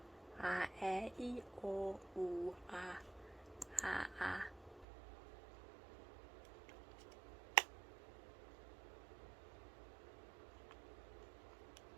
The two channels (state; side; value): drops out; left; at 4.9 s